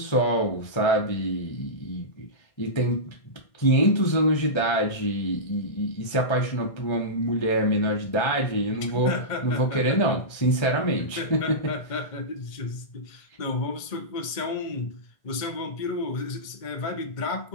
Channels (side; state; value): right; late; 1.6 ms